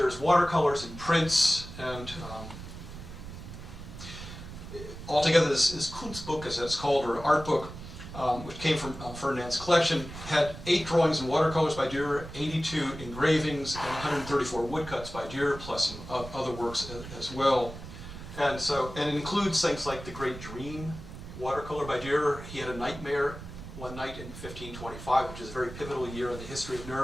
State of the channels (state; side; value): noise; right; rumble, 12 dB below the sound